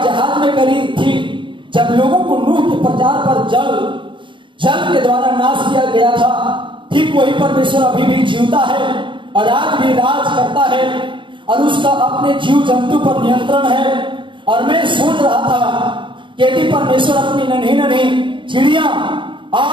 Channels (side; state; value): left; late; 0.24 ms